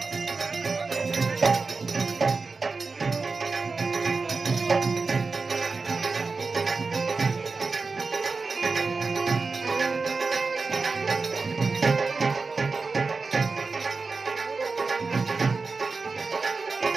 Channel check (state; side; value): quieter; left; 4.2 dB